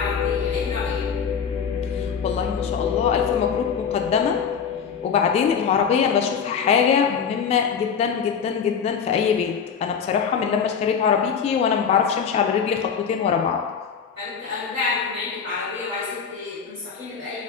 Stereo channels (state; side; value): quieter; right; 6.8 dB